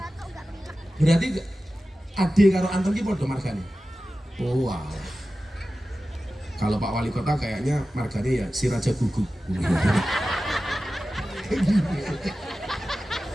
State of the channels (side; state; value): both; normal; correlation 0.94